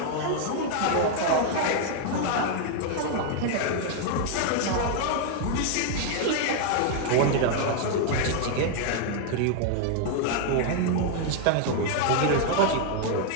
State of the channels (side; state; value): both; different; correlation 0.00